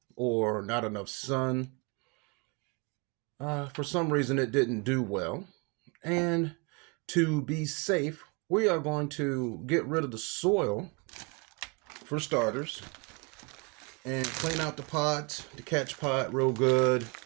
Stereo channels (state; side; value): quieter; left; 31.2 dB